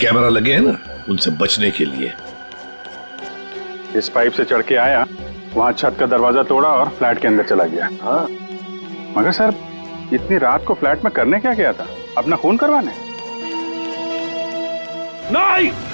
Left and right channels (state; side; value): inverted; both; correlation -1.00